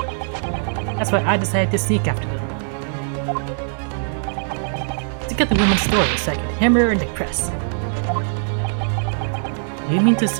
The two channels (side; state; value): left; silent; digital silence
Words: That's why I decided to sneak after them. To get the woman's story so I could hammer her in the press. Do you mean to